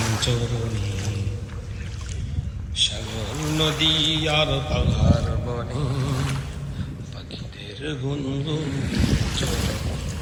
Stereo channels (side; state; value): both; identical; correlation 1.00